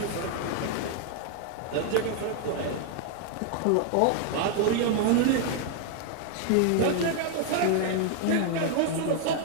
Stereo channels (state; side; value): different; both; correlation 0.00